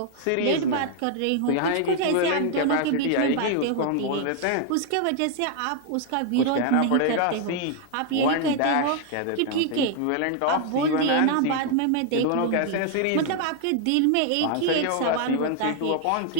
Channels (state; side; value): different; both; correlation 0.00